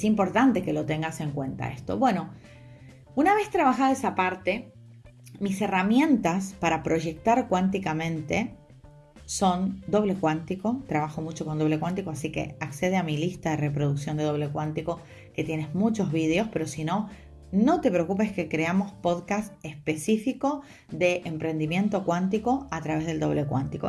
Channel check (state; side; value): identical; both; correlation 1.00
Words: importante que lo tengas en cuenta esto. Bueno, una vez trabajada esa parte, mis herramientas para proyectar cuánticamente son doble cuántico. Trabajo mucho con doble cuántico, así que accede a mi lista de reproducción de doble cuántico, que tienes muchos vídeos, pero si no, no te preocupes que creamos podcast específico de emprendimiento cuántico a través del doble